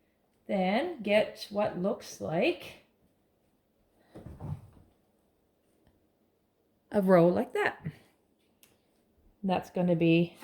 then get what looks like a row like that. And that's going to be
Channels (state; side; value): identical; both; correlation 1.00